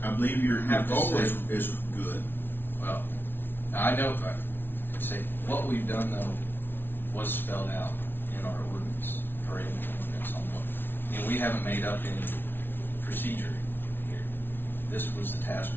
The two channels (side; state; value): right; late; 0.10 ms